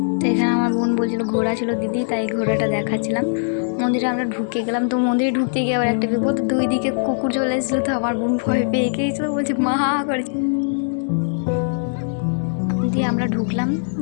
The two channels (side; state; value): right; silent; digital silence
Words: তো এখানে আমার বোন বলছিল ঘোড়া ছিল দিদি, তাই ঘোড়াটা দেখাচ্ছিলাম। মন্দিরে আমরা ঢুকে গেলাম, তো মন্দিরে ঢুকতে গিয়ে আবার একটা বিপদ, দুই দিকে কুকুর চলে এসেছিলো, তো আমার বোন ভয় পেয়ে গিয়েছিল, বলছে মা করে দিয়ে আমরা ঢুকলাম,